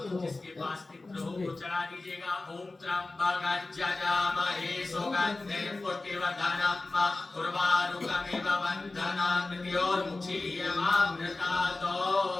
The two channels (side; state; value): right; quieter; 3.3 dB